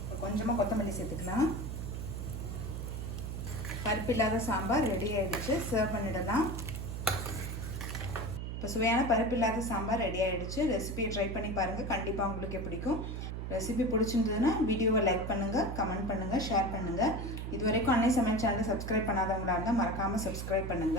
கொஞ்சமாக கொத்தமல்லி சேர்த்துக்கலாம். பருப்பு இல்லாத சாம்பார் ரெடி ஆகிடுச்சு. சர்வ் பண்ணிடலாம். இப்போ சுவையான பருப்பு இல்லாத சாம்பார் ரெடி ஆகிடுச்சு. ரெசிபியை ட்ரை பண்ணி பாருங்கள், கண்டிப்பாக உங்களுக்கு பிடிக்கும். ரெசிபி பிடிச்சிருந்ததுன்னா வீடியோவை லைக் பண்ணுங்கள், கமெண்ட் பண்ணுங்கள், ஷேர் பண்ணுங்கள். இது வரைக்கும் அன்னை சமையல் சேனலை சப்ஸ்கிரைப் பண்ணாதவங்களாக இருந்தால் மறக்காமல் சப்ஸ்கிரைப்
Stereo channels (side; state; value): right; noise; hum, 5 dB below the sound